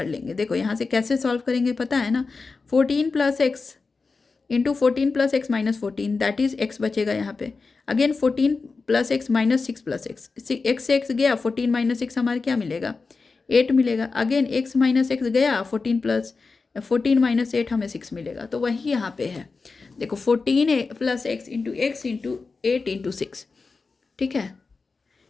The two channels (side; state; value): right; quieter; 4.3 dB